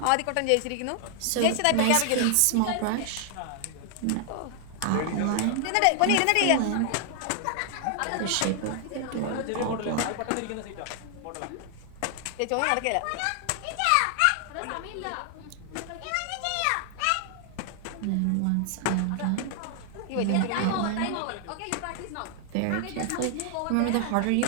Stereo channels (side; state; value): both; different; correlation 0.00